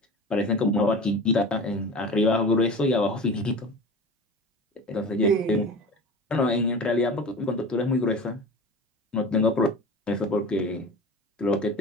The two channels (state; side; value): normal; both; correlation 0.34